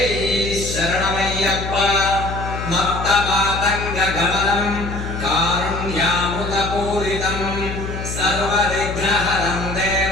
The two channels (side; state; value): left; noise; hum, 6 dB below the sound